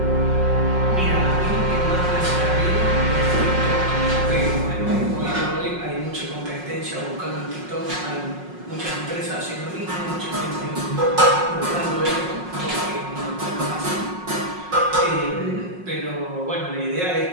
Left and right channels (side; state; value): left; late; 5.5 ms